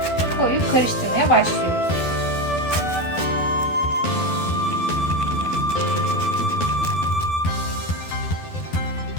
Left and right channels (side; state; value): right; late; 12 ms